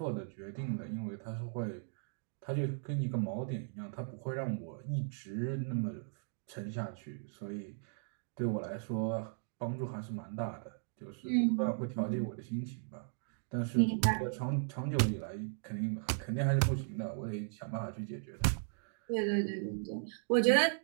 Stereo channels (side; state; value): left; silent; digital silence